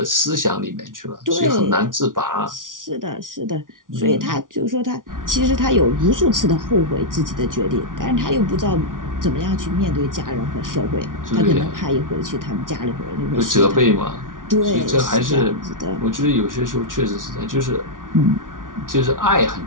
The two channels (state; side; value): late; left; 0.88 ms